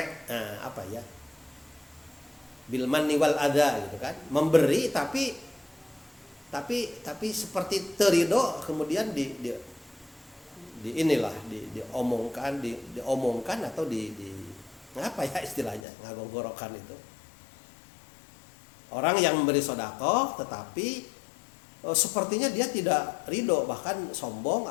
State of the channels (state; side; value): drops out; right; at 15.8 s